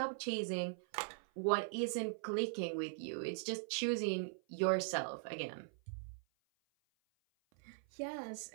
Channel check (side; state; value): left; silent; 51 dB below the other